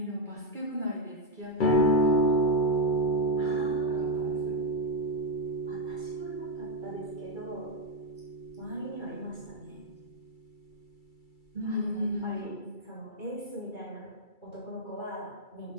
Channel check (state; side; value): late; right; 2.3 ms